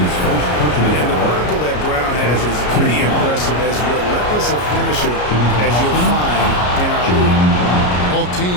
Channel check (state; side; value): late; right; 33 ms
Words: the vertical that Brown has is pretty impressive, as relentless a finisher as you'll find in our league. Both